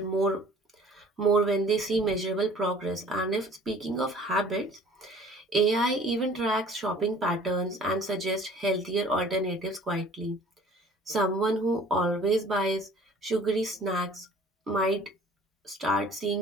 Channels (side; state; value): both; normal; correlation 0.50